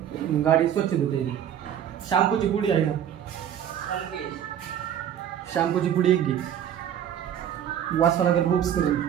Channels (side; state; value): left; quieter; 9.8 dB